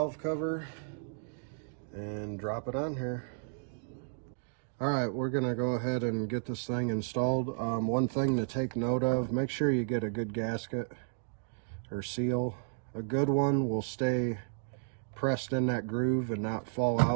cover and drop it on here. All right, we're gonna go ahead and get this thing installed. One thing to take note of, make sure you get a good gasket or seal. A good one will stay pressed in that groove and not fall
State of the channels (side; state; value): left; silent; digital silence